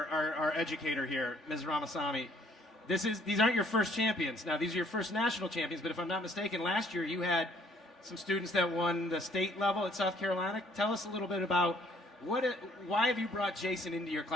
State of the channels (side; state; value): both; normal; correlation 0.62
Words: our educator here, Ms. Ramasamy. These aren't your first champions. Now, these are your first national champions, but if I'm not mistaken, last year you had some students that won the state level at South Carolina. Tell us a little bit about why have you brought Jason into your